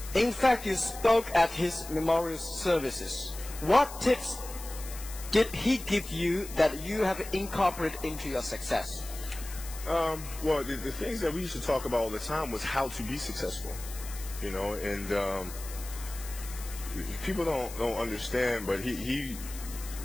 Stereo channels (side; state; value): left; noise; hiss, 13 dB below the sound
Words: In fact, you spoke at his memorial services. What tips did he give you that you have incorporated into your success? Well, the things that we used to talk about all the time was how to be successful, you know, and people don't understand, but he